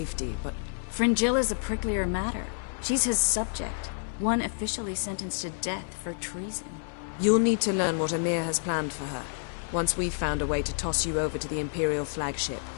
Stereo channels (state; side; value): silent; right; 59 dB below the other